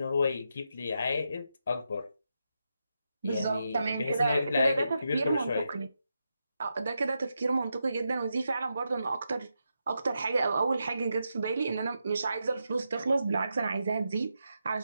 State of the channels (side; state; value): both; inverted; correlation -0.85